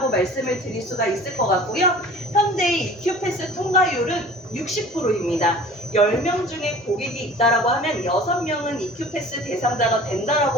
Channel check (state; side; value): normal; both; correlation 0.44